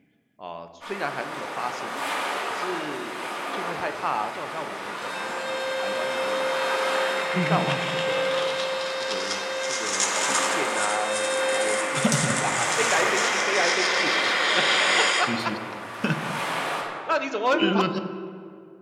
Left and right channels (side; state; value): both; identical; correlation 1.00